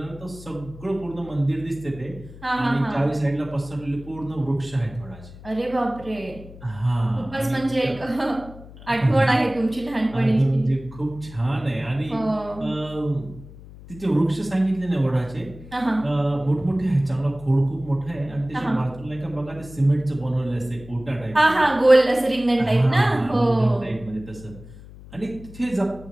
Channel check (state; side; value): noise; left; hum, 18 dB below the sound